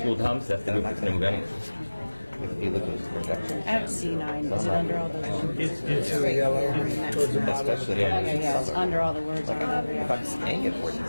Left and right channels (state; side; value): inverted; both; correlation -1.00